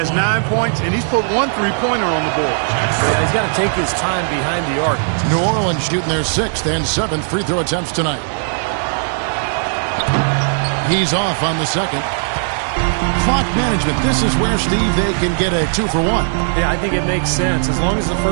9 points, and he's put 1 3-pointer on the board. Yeah, he's got to take his time behind the arc. New Orleans shooting their 6th and 7th free throw attempts tonight. He's off on the second. Clock management. This is where, Steve, they can get a 2 for 1. Yeah, I think it makes sense. As long as the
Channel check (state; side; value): silent; left; digital silence